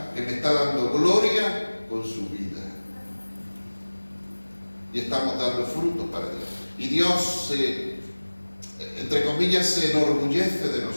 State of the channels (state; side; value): inverted; both; correlation -1.00